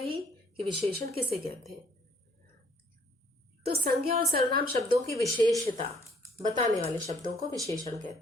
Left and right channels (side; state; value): both; normal; correlation 0.62